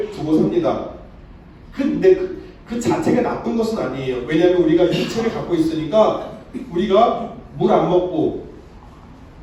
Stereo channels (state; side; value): identical; both; correlation 1.00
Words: 두고 삽니다. 근데 그 자체가 나쁜 것은 아니에요. 왜냐하면 우리가 육체를 갖고 있으니까 우리가 물 안 먹고